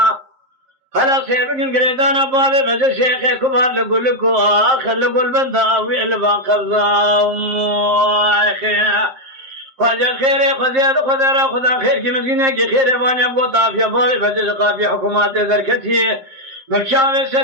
خلاص يبقى قريدان بابي بجد شيخي كبار لقول لكو آخر لقول بنداوي البان خرزان خواجه خير خدا خير کی مزینه کی خیر وانی ابو طافیا بابی بجز قافی حکومت درکتی مکشاوی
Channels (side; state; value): left; late; 7.6 ms